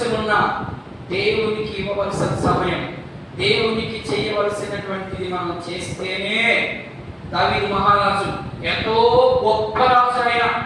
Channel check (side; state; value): both; identical; correlation 1.00